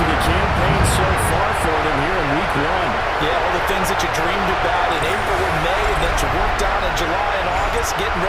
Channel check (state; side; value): identical; both; correlation 1.00